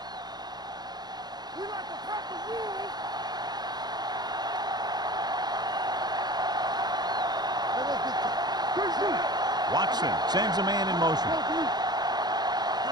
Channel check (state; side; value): late; left; 0.20 ms